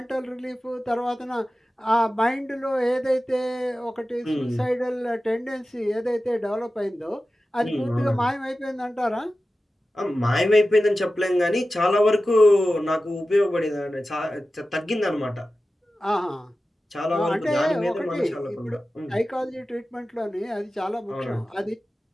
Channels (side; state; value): both; normal; correlation 0.94